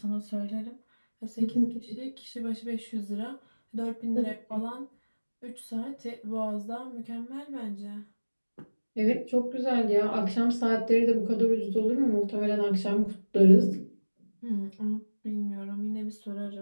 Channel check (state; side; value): inverted; both; correlation -1.00